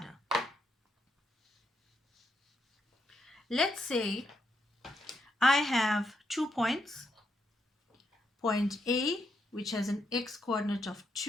Let's say I have 2 points. Point A, which has an x-coordinate of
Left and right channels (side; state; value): both; normal; correlation 0.79